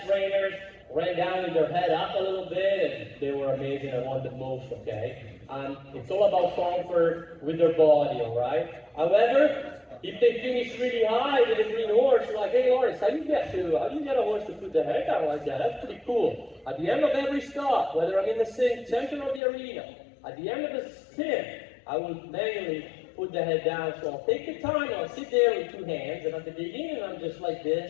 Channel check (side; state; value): right; drops out; at 19.4 s